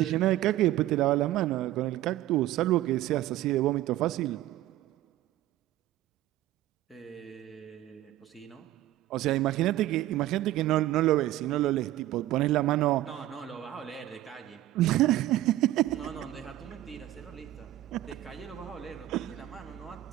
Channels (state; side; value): quieter; left; 14.7 dB